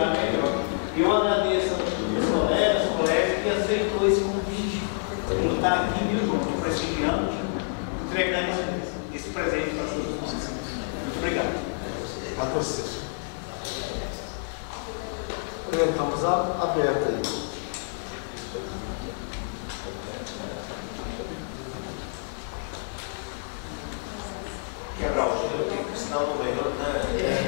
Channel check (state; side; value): silent; right; 60 dB below the other